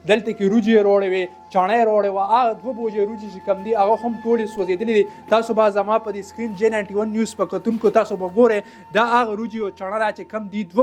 دلته کې روجې روړې وې چڼۍ روړې وه هغه 2 بوجې روجې چې کم دي هغه هم ټولې سوځېدلې دي تاسو به زما په دې سکرین J91 نیوز په کتونکو تاسو به ګورئ دا هغه روجې او چڼه ده چې کم دي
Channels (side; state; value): both; identical; correlation 1.00